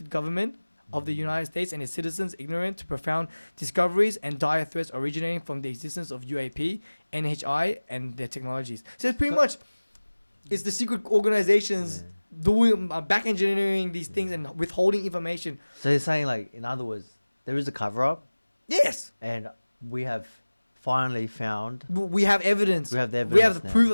government of the United States and its citizens ignorant to profound discoveries and dire threats originating from the existence of UAP, NHI, and their technologies. So it's pretty much, it's the secret organizations doing back engineering these things and withholding information. So you're saying, like, in other words, there is a cover up. Yes. And we have finally found. We have evidence. We have the evidence. We have the proof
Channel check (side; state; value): both; inverted; correlation -1.00